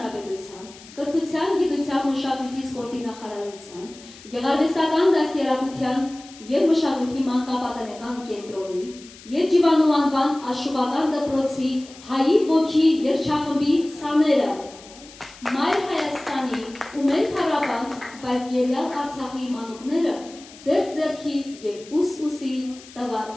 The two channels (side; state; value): left; noise; hiss, 20 dB below the sound